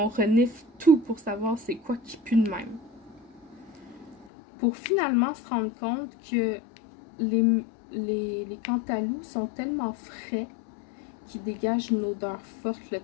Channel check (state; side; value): drops out; right; at 4.3 s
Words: renifle tout pour savoir c'est quoi qui pue de même. Pour finalement se rendre compte que les cantalous sont tellement frais qu'ils dégagent une odeur forte, là.